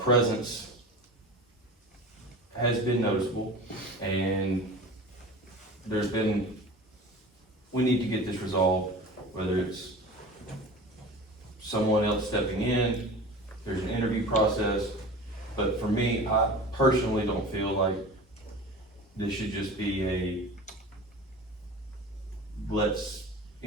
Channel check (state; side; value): normal; both; correlation 0.36